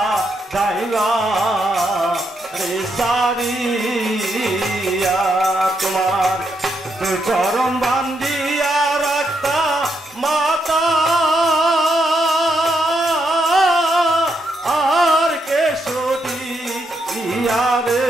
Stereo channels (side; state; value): both; normal; correlation 0.79